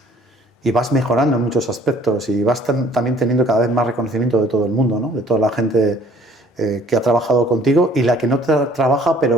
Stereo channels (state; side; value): normal; both; correlation 0.57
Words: vas mejorando en muchos aspectos y vas también teniendo cada vez más reconocimiento de todo el mundo, ¿no? De toda la gente que ha trabajado contigo y la que no trabaja